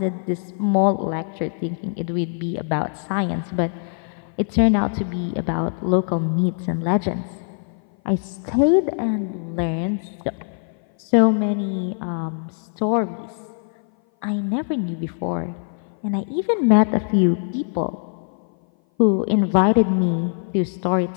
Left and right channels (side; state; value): right; silent; 58 dB below the other